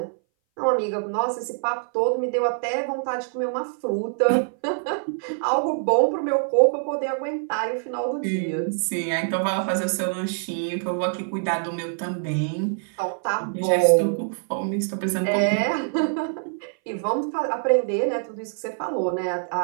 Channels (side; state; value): left; silent; 59 dB below the other